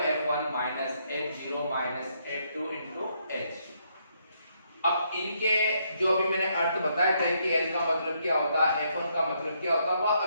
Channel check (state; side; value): inverted; both; correlation -0.74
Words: minus F0 minus F2 into H। अब इनके जो अभी मैंने अर्थ बताए थे कि L का मतलब क्या होता है, F1 का मतलब क्या होता है, वह